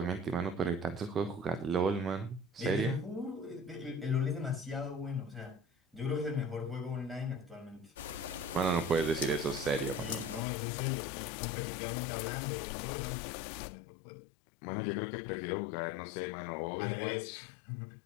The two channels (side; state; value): right; drops out; at 10.4 s